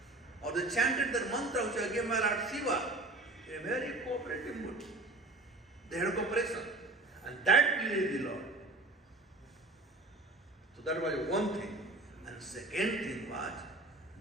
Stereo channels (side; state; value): left; quieter; 3.0 dB